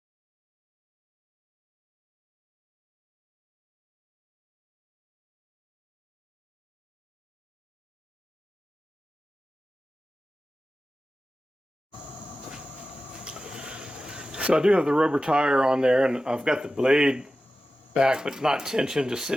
So I do have the rubber tire on there, and I've got the blade back but not tensioned, just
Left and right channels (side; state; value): both; normal; correlation 0.94